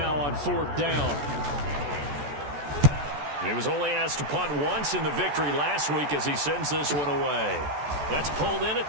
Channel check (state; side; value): late; left; 14 ms